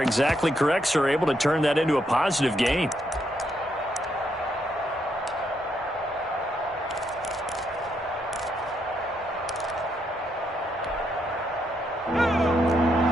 correct, sir, able to turn that into a positive gain.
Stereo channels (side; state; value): both; normal; correlation 0.77